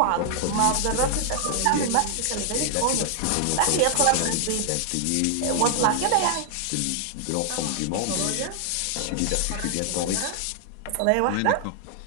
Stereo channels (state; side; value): different; both; correlation 0.00